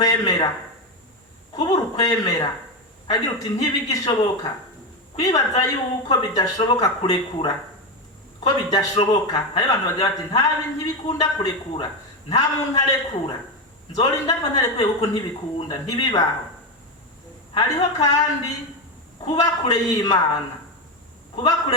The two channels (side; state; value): both; normal; correlation 0.13